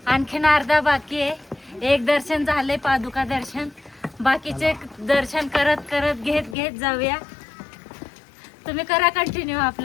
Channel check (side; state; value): right; drops out; at 6.6 s